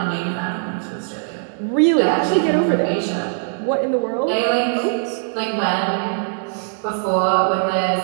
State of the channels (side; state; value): left; silent; 62 dB below the other